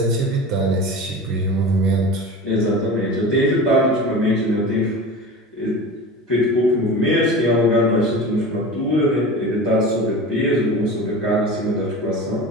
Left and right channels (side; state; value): both; normal; correlation 0.32